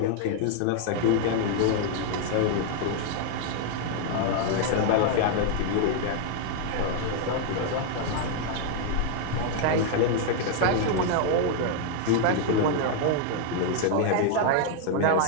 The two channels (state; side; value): different; both; correlation 0.00